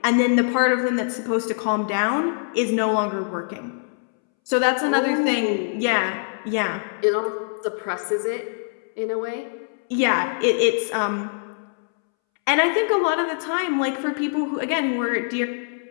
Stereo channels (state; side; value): silent; right; 63 dB below the other